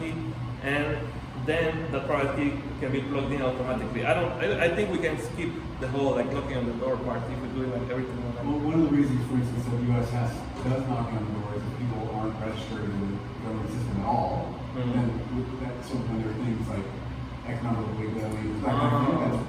and then the private key can be plugged in automatically. I think we can skip the whole like knocking on the door part if we do like everything on that. Well, one of the reasons, for instance, that the U.S. does knocking on the door is that people aren't registered in the government system at all. And so when there are things like economic withholding, that kind of thing, that's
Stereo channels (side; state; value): both; identical; correlation 1.00